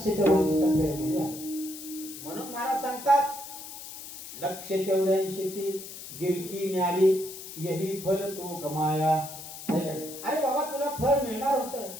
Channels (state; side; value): noise; left; hiss, 12 dB below the sound